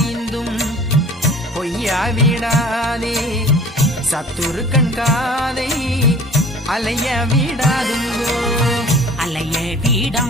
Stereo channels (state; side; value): normal; both; correlation 0.47